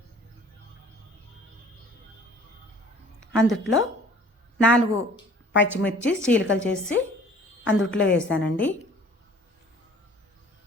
అందుట్లో 4 పచ్చిమిర్చి చీలికలు చేసి అందుట్లో వేసానండి.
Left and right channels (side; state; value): both; normal; correlation 0.50